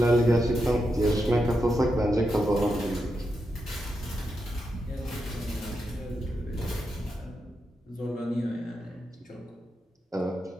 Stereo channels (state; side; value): normal; both; correlation 0.85